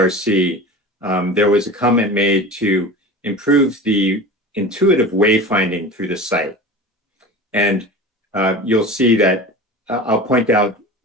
there was a comment made to improve the intuitive wayfinding through the site. And you'll see that I'll point out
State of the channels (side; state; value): both; normal; correlation 0.34